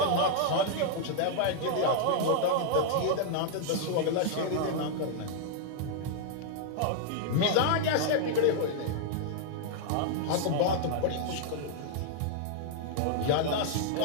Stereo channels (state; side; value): different; both; correlation -0.01